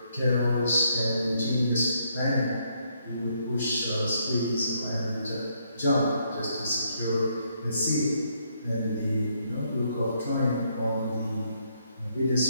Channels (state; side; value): inverted; both; correlation -0.73